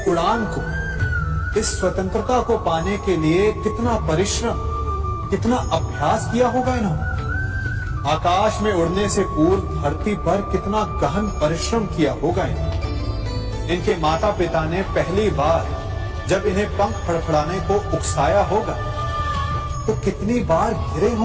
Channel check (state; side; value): identical; both; correlation 1.00